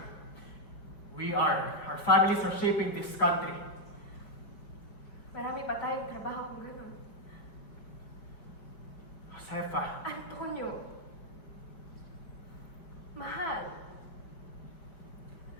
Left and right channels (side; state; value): right; late; 5.1 ms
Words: our families are shaping this country. Marami pa tayong trabaho kung gano'n. Josefa, Antonio, mahal.